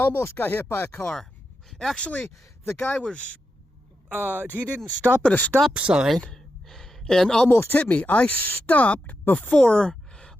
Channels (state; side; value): normal; both; correlation 0.87